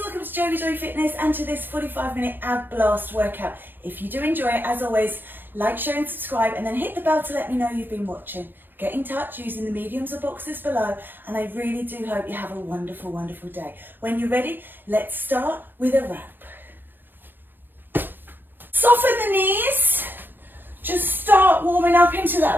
welcome to JoeGa Fitness and to this 45-minute ab blast workout. If you do enjoy it, as always, like, share and subscribe, and then hit the bell to let me know you've been watching. Get in touch using the mediums or boxes below, and I really do hope you have a wonderful, wonderful day. When you're ready, let's start with a wrap. Soften the knees. Just start warming up into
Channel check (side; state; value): left; late; 0.095 ms